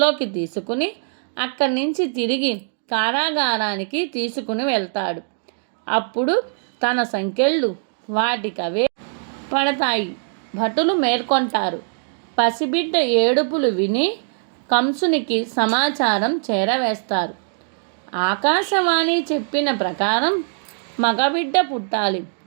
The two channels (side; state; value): left; silent; digital silence